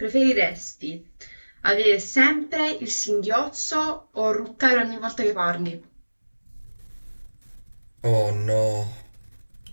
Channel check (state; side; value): inverted; both; correlation -1.00